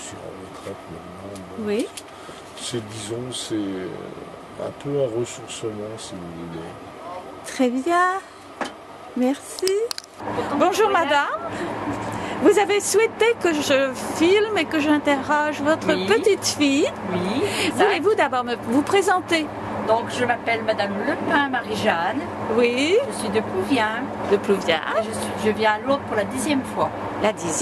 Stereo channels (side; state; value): both; identical; correlation 1.00